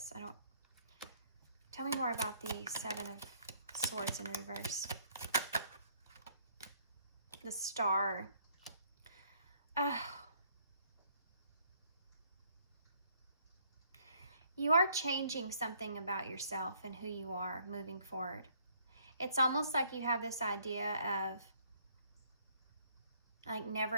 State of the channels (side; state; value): both; inverted; correlation -0.65